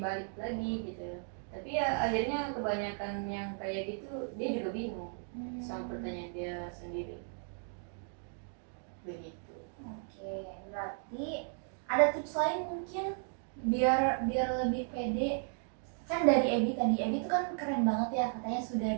balik lagi gitu. Tapi ya akhirnya kebanyakan yang kayak gitu dia juga bingung sama pertanyaan dia sendiri. Begitu. Oke, berarti ada tips lain mungkin biar lebih pede. Kan dari Ebi tadi, Ebi tuh kan keren banget ya, katanya sudah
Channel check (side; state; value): left; silent; 54 dB below the other